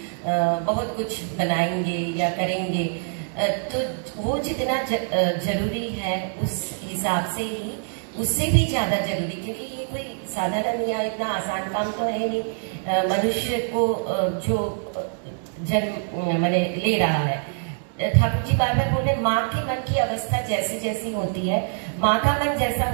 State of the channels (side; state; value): left; silent; 62 dB below the other